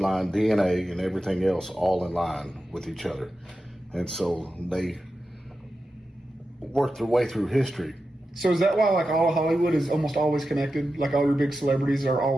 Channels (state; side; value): normal; both; correlation 0.91